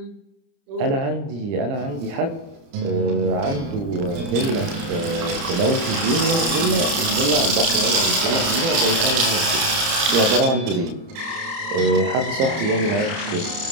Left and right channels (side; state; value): left; late; 30 ms